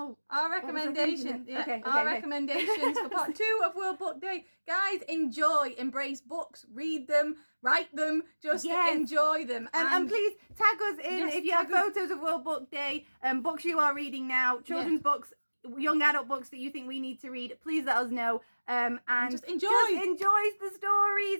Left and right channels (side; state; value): both; inverted; correlation -1.00